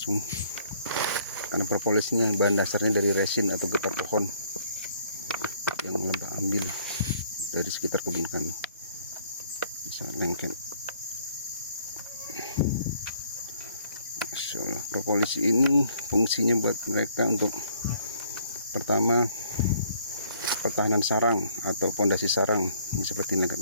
karena propolis ini bahan dasarnya dari resin atau getah pohon yang lebah ambil dari sekitar kebun kami, bisa lengket. Masya Allah, propolis ini fungsinya buat mereka untuk pertama pertahanan sarang atau pondasi sarang. Ini seperti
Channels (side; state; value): both; inverted; correlation -0.62